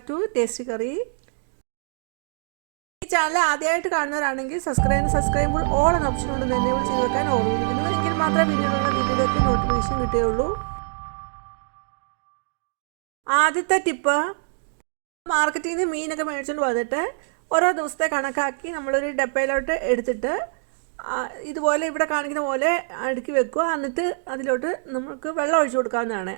to Tasty Curry. ഈ ചാനൽ ആദ്യമായിട്ട് കാണുന്നവരാണെങ്കിൽ സബ്സ്ക്രൈബ് ഓൾ എന്ന ഓപ്ഷൻ കൊണ്ട് തന്നെ ചെയ്ത് വെക്കാൻ ഓർമ്മിപ്പിക്കുന്നു. എങ്കിൽ മാത്രമേ പിന്നീടുള്ള വീഡിയോയിലേക്ക് നോട്ടിഫിക്കേഷൻ കിട്ടുകയുള്ളൂ. ആദ്യത്തെ ടിപ്പ്, മാർക്കറ്റിൽ നിന്ന് മീനൊക്കെ മേടിച്ചുകൊണ്ട് വന്നിട്ട് ഓരോ ദിവസത്തെ കണക്കാക്കി നമ്മളൊരു ഡപ്പയിലോട്ട് എടുത്തിട്ട് ഇതുപോലെ ഇവിടെ കാണിക്കുന്ന പോലെ അടുക്കി വെക്കുക. എന്നിട്ട് അതിലോട്ട് നമുക്ക് വെള്ളം ഒഴിച്ചു കൊടുക്കാവുന്നതാണ്.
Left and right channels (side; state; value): left; silent; digital silence